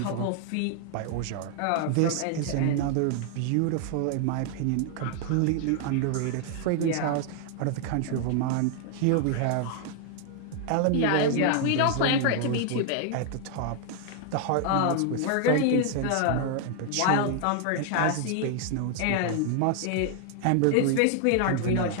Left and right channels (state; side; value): different; both; correlation 0.00